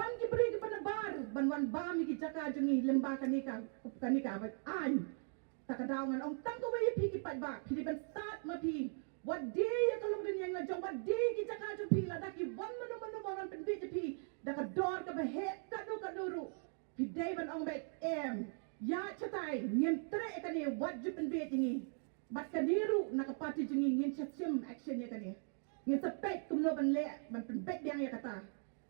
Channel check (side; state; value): left; silent; 51 dB below the other